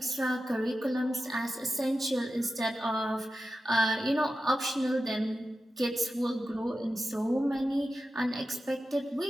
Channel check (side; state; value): both; normal; correlation 0.92